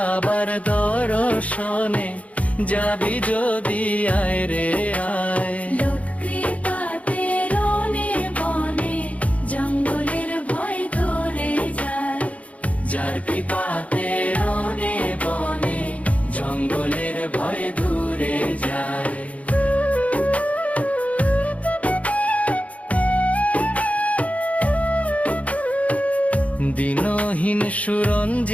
দর্শনে যাবি যদি আয় রে আয়। লোক কৃপাতে রনে বনে জঙ্গলের ভয় দূরে যায়। যার কৃপাতে রনে বনে জঙ্গলের ভয় দূরে যায়। দিনহীন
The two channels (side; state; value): right; late; 0.067 ms